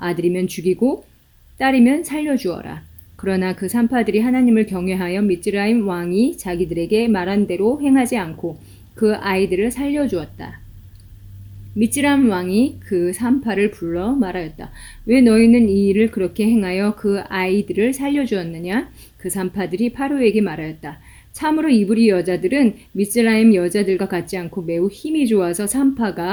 죽이고 딸이면 살려주어라. 그러나 그 산파들이 하나님을 경외하여 미즈라임 왕이 자기들에게 말한 대로 행하지 않고 그 아이들을 살려주었다. 미즈라임 왕이 그 산파를 불러 말하였다. 왜 너희는 이 일을 그렇게 행하여 그 아이들을 살려주었느냐? 그 산파들이 파로에게 말하였다. 참으로 이브리 여자들은 미즈라임 여자들과 같지 않고 매우 힘이 좋아서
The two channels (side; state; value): both; identical; correlation 1.00